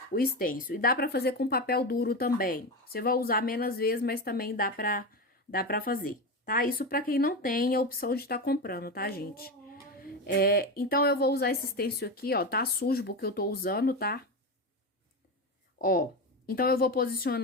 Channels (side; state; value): both; normal; correlation 0.19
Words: stencil. E dá pra fazer com papel duro também. Você vai usar menos vezes, mas também dá pra fazer, tá? Isso pra quem não tem a opção de estar comprando, tá, gente? Então, eu vou usar esse stencil aqui, ó, tá sujo porque eu tô usando, tá? Ó, então, eu vou